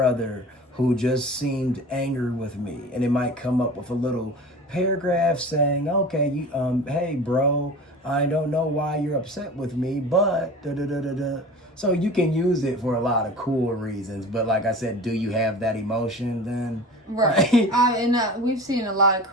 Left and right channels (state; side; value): normal; both; correlation 0.36